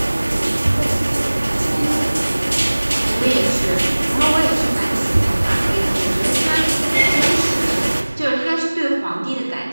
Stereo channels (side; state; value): both; inverted; correlation -1.00